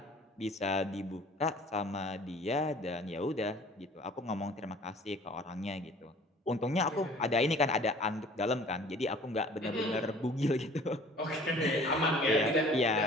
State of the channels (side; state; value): both; normal; correlation 0.50